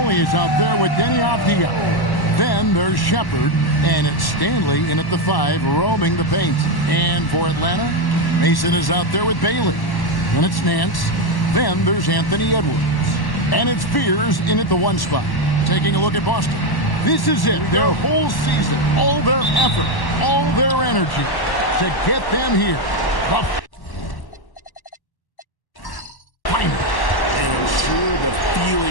is out there with Denny Avdia. Then there's Shepard, and it's Stanley in at the 5, roaming the paint. And for Atlanta, Mason is out there with Bailey. Then it's Nance. Then there's Anthony Edwards. And it's Fears in at the 1 spot. Taking a look at Boston. This is it, their whole season, all their effort, all their energy to get them here. The final. And I'm sure the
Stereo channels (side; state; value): right; late; 1.1 ms